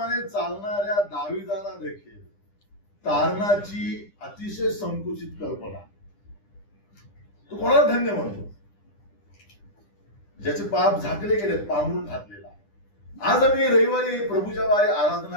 चालणाऱ्या दाविदाला देखील तारणाची अतिशय संकुचित कल्पना. तो कोणाला धन्य म्हणतो? ज्याचे पाप झाकले गेलेत, पांघरून घातलेला. आज आम्ही रविवारी प्रभूच्या वारी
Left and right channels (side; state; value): right; late; 9.9 ms